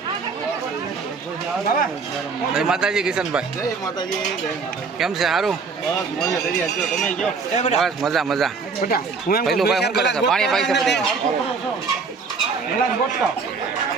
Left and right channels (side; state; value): left; quieter; 4.9 dB